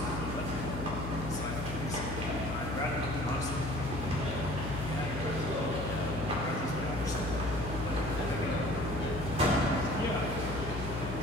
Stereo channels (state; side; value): noise; left; hum, 6 dB below the sound